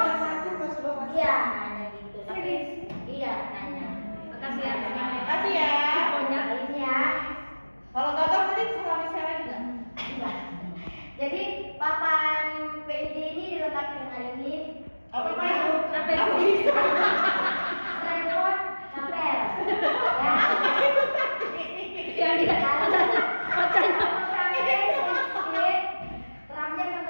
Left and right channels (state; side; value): inverted; both; correlation -1.00